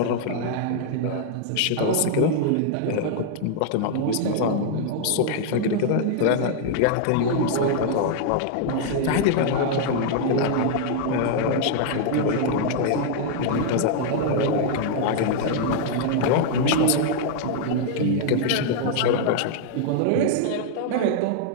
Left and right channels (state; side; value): different; both; correlation -0.01